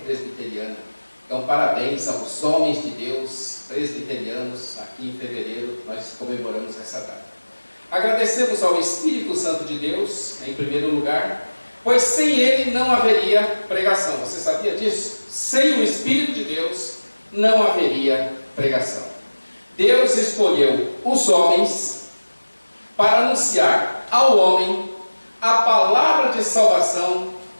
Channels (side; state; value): both; inverted; correlation -1.00